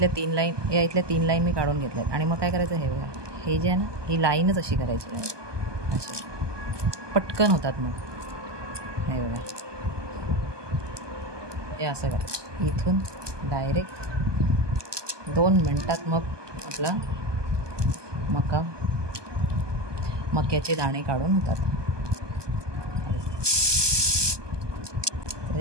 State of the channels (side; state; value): left; late; 1.2 ms